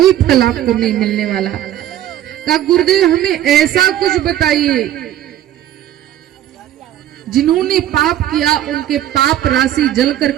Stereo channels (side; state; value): left; quieter; 12.1 dB